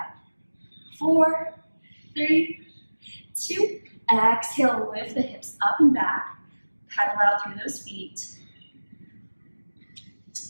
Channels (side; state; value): both; inverted; correlation -1.00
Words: 4, 3, 2. Exhale, lift the hips up and back. Pedal out through those feet.